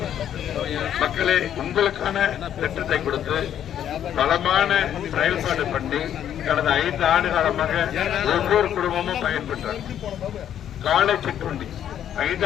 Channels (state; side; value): quieter; right; 10.1 dB